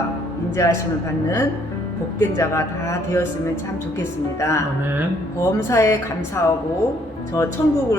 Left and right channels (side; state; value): both; normal; correlation 0.66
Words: 인자하심을 받는 복된 자가 다 되었으면 참 좋겠습니다. 아멘. 범사에 감사하고 저